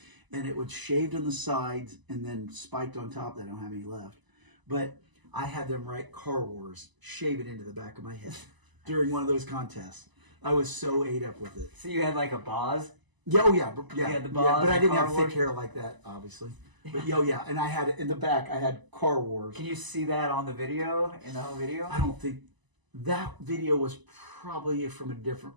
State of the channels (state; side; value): late; left; 1.0 ms